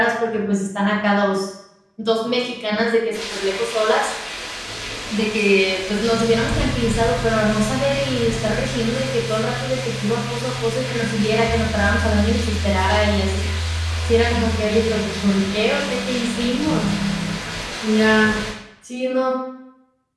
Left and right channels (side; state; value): both; identical; correlation 1.00